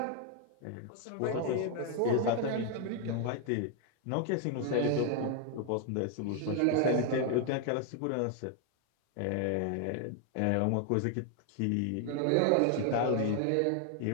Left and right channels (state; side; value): different; both; correlation 0.00